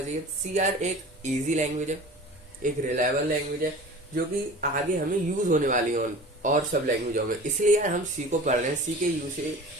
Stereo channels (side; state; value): both; normal; correlation 0.39